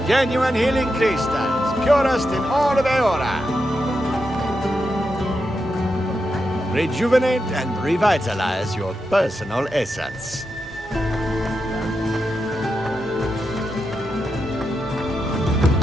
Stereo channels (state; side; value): normal; both; correlation 0.87